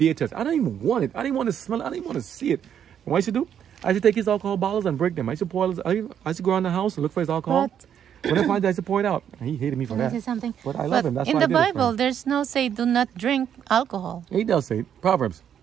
touch it. I don't even want it. I didn't want to smell it. I didn't want to see it. And what I should do? I should take his alcohol bottles and break them. I used to go around the house and look for his alcohol. When I find it, I used to pour it out. And he hated me for that. Something. But I love him. That's in why the I did Bible, there's no say do not drink alcohol. He does say Proverbs.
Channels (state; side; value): quieter; left; 9.0 dB